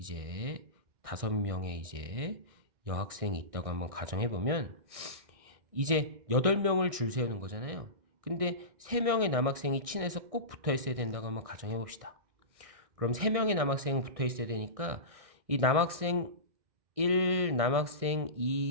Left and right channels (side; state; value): left; late; 1.6 ms